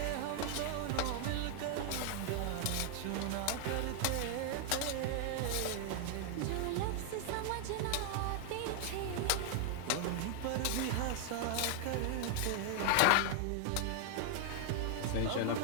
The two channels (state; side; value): different; both; correlation 0.00